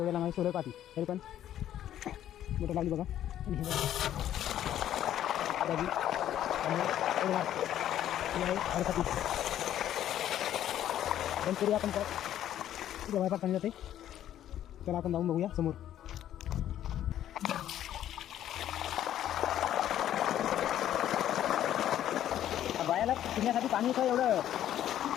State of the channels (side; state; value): right; quieter; 11.5 dB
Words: लांब आहे सोलर पाती. तरी पण मोटर लावली बघा. आणि हे पण तरी आपण काय जवळपास पाणी जाते. त्याला आपण जाऊन बघूया समोर. बायाला पिण्यासाठी पाणी तर एवढं